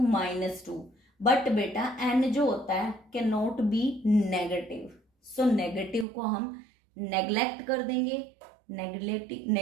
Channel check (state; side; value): drops out; left; at 6.1 s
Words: minus 2। But बेटा n जो होता है can not be negative, so negative को हम नेग्लेक्ट कर देंगे।